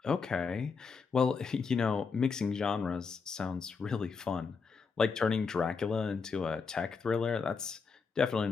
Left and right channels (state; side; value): quieter; right; 5.2 dB